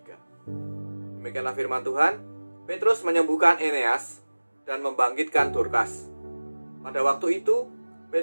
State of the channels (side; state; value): both; inverted; correlation -1.00